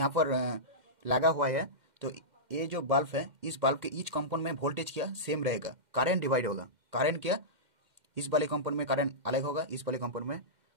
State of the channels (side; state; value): left; late; 2.1 ms